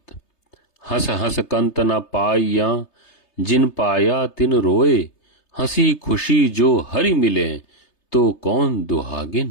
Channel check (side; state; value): right; late; 3.3 ms